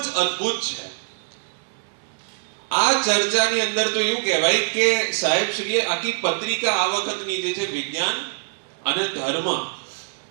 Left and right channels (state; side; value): silent; left; digital silence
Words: અદ્ભુત છે। આ ચર્ચાની અંદર તો એવું કહેવાય કે સાહેબ શ્રીએ આખી પત્રિકા આ વખતની જે છે વિજ્ઞાન અને ધર્મ